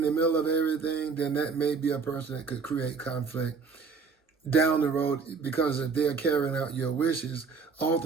the middle of everything, then that may be a person that could create conflict down the road, because if they're carrying out your wishes,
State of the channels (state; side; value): quieter; left; 5.2 dB